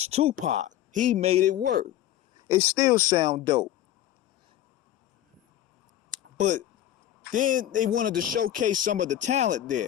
Tupac. He made it work. It still sound dope. But then they wanted to showcase some of the talent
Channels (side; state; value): right; quieter; 12.3 dB